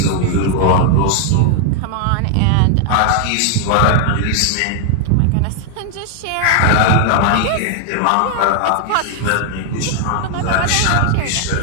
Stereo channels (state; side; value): different; both; correlation 0.00